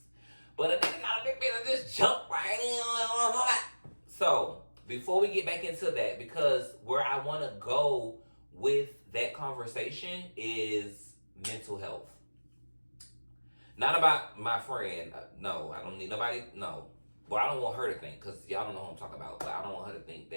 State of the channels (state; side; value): inverted; both; correlation -1.00